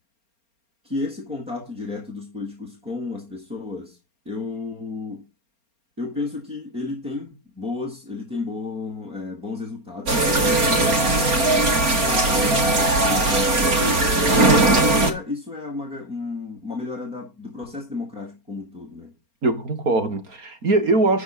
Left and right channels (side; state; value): left; late; 4.3 ms